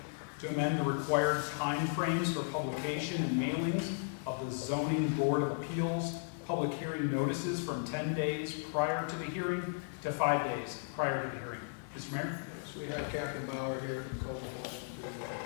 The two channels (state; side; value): silent; right; digital silence